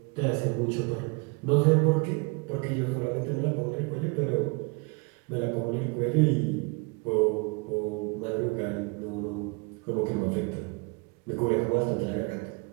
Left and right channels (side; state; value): left; quieter; 30.2 dB